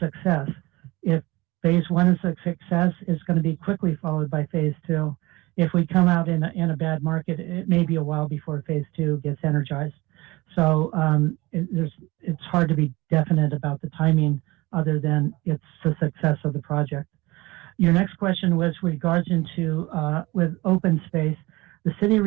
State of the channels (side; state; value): left; quieter; 21.5 dB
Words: If phase 1 is a success, it's going to be quickly followed by phase 2. If we come out in a bad market, it may be a while before phase 2 gets energized. So it's hard to be definite about the timing other than it's the success of the project. Your next question was with regards into with open space. The city